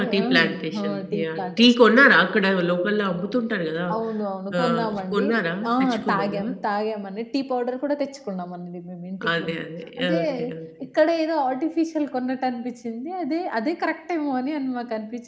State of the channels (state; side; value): identical; both; correlation 1.00